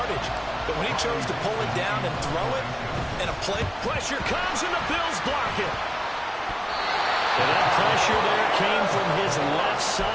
But when he chose to pull it down and throw it, and a play... Pressure comes and the Bills block it. And that pressure there came from his left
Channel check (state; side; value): identical; both; correlation 1.00